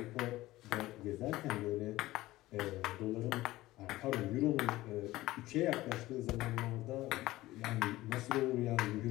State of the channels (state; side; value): quieter; right; 17.3 dB